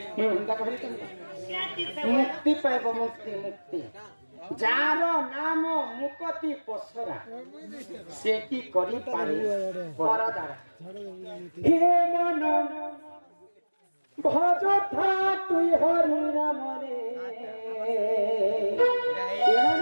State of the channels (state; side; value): inverted; both; correlation -1.00